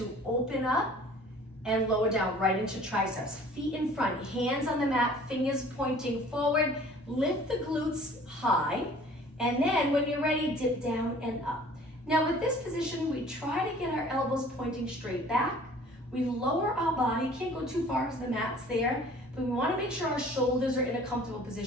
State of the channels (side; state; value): both; normal; correlation 0.50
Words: open up, and lower down right into triceps. Feet in front, hands on the mat, fingers pointing forward. Lift the glutes high. And then when you're ready, dip down and up. Now with this position, we try to get our elbows pointing straight back. We lower our body, can't go too far because the mat's there, but we wanna make sure our shoulders are in a comfortable